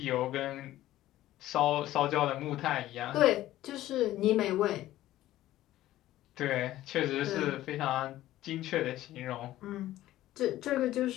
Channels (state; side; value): quieter; right; 14.7 dB